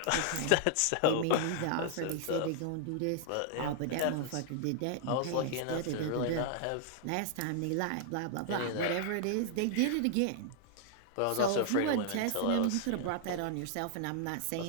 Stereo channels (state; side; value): different; both; correlation 0.00